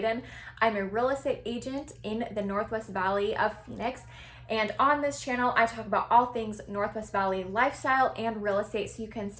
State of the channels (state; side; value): identical; both; correlation 1.00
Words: I'm a real estate agent in the Northwest Valley of Phoenix. And on this channel, I talk about all things Northwest Valley lifestyle and real estate so you can